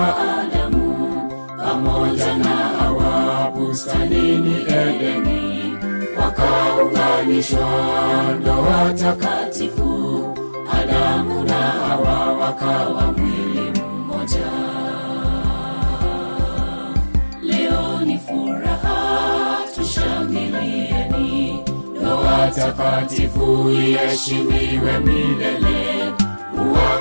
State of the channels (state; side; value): inverted; both; correlation -1.00